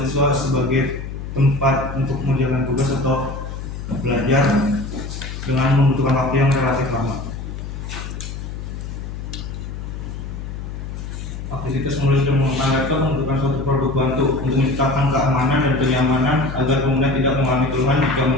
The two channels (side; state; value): left; noise; hum, 8 dB below the sound